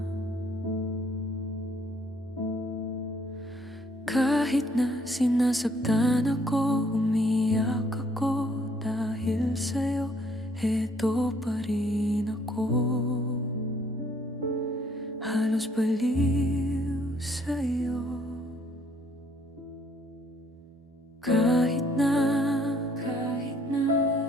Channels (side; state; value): both; normal; correlation 0.64